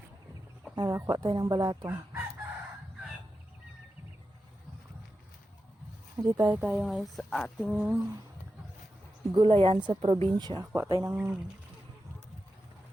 Kuha tayo ng balatong. Hindi tayo ngayon sa ating gulayan sa probinsya. Kuha tayo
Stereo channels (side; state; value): both; normal; correlation 0.90